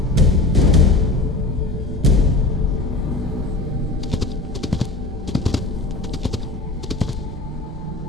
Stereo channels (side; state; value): right; quieter; 3.0 dB